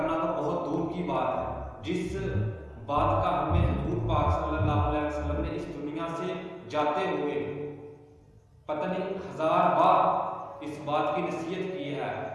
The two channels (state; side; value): identical; both; correlation 1.00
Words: تو بہت دور کی بات ہے۔ جس بات کا ہمیں حضور پاک صلی اللہ علیہ وسلم نے اس دنیا سے جاتے ہوئے پتہ نہیں 1000 بار اس بات کی نصیحت کی ہے